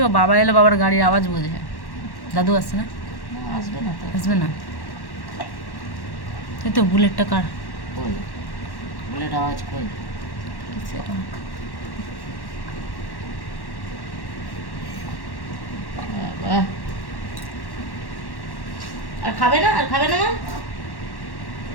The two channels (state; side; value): late; right; 1.1 ms